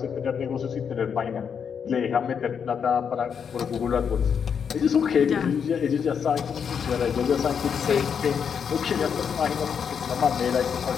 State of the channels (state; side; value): quieter; right; 7.1 dB